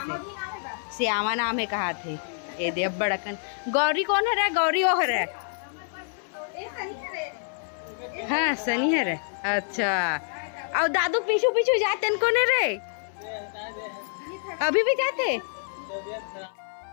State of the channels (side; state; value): right; silent; 57 dB below the other